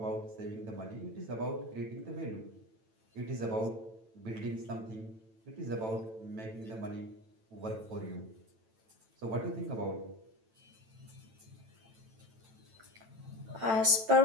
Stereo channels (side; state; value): left; late; 9.0 ms